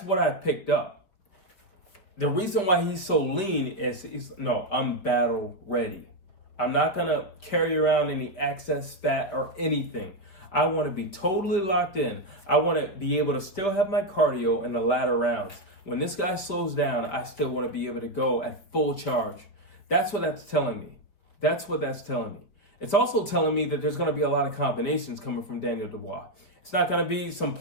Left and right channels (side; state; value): right; late; 5.3 ms